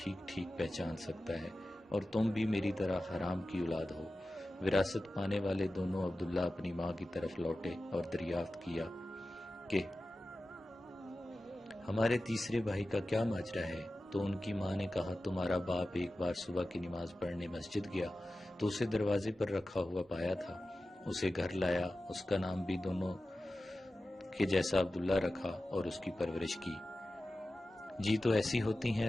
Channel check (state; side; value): normal; both; correlation 0.94